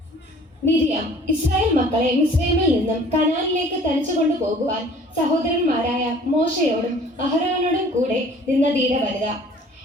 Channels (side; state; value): both; normal; correlation 0.51